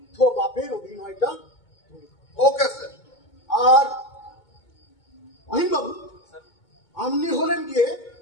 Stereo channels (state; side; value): late; right; 2.2 ms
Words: বাপের অভিনয়টা? Okay sir. আর বাবু, আপনি হলেন গিয়ে